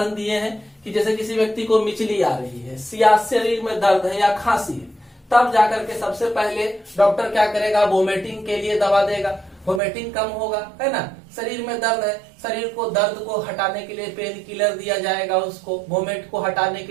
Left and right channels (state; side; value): drops out; left; at 9.8 s